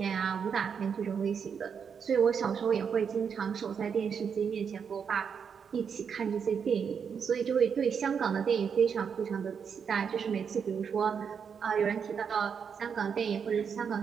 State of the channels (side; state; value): left; quieter; 6.8 dB